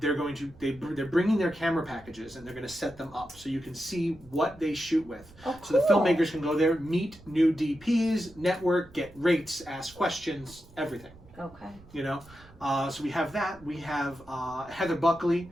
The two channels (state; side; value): noise; right; rumble, 23 dB below the sound